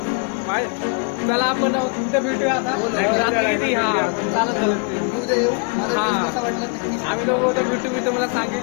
चला आपण उद्या भेटूया. आता चालत झालं ते उद्या येऊ. मला कसं वाटलं नक्की आम्ही दोघं उद्या भेटू. मी तुम्हाला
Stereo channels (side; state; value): right; quieter; 34.4 dB